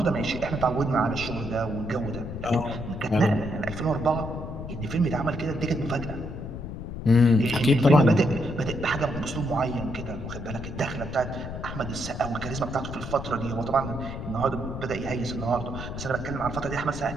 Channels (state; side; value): noise; left; rumble, 8 dB below the sound